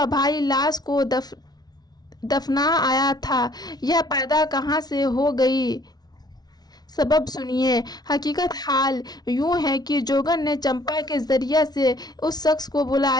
भाई लाश को दफना आया था, यह पैदा कहाँ से हो गई, सबब सुनिए। हकीकत हाल यूं है कि जोगन ने चंपा के जरिए से उस शख्स को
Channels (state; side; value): late; right; 0.19 ms